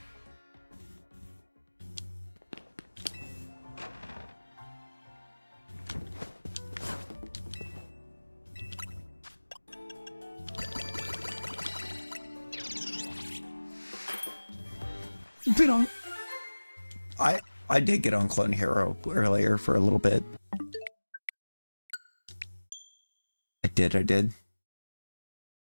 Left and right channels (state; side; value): inverted; both; correlation -1.00